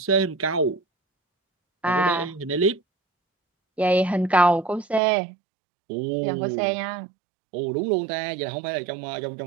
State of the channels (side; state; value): left; drops out; at 5.0 s